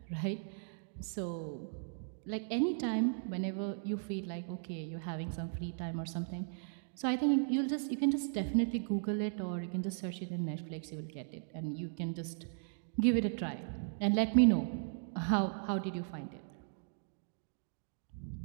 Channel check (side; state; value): left; silent; digital silence